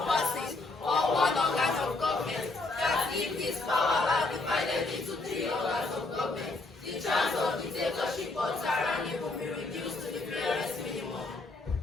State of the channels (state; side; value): quieter; right; 3.3 dB